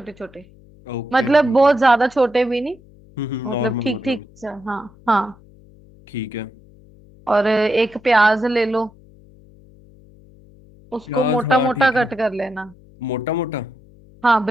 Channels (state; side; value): noise; left; hum, 25 dB below the sound